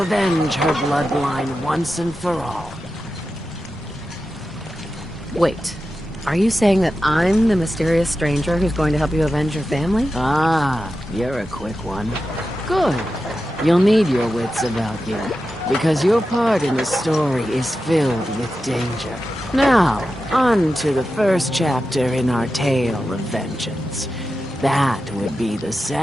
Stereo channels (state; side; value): normal; both; correlation 0.91